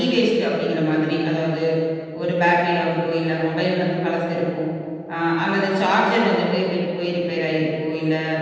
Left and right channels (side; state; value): both; identical; correlation 1.00